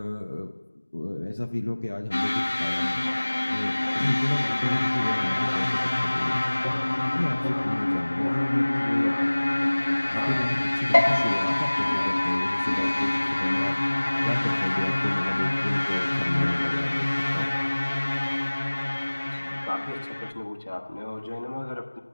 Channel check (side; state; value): both; inverted; correlation -1.00